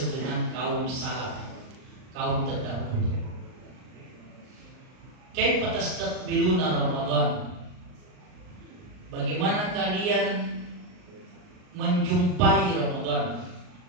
dengan kaum salaf, kaum terdahulu. Kaifa tastaqbiluna Ramadan? Bagaimana kalian menjumpai Ramadan,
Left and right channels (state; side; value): late; left; 39 ms